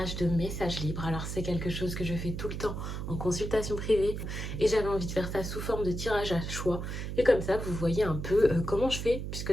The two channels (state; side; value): noise; right; hum, 5 dB below the sound